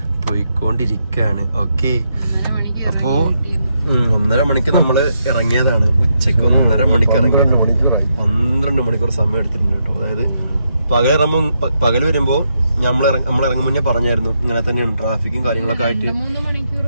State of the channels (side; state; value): both; inverted; correlation -0.80